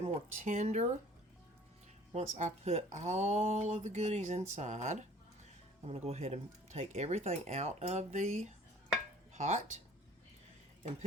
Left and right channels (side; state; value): both; normal; correlation 0.51